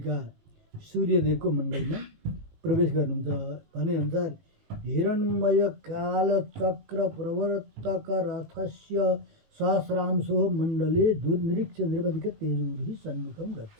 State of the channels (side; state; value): left; late; 19 ms